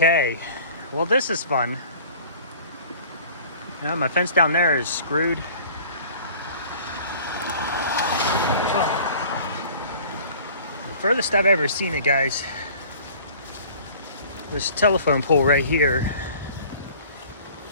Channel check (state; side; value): inverted; both; correlation -0.48